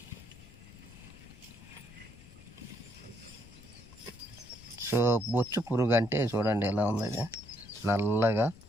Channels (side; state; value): left; noise; rumble, 20 dB below the sound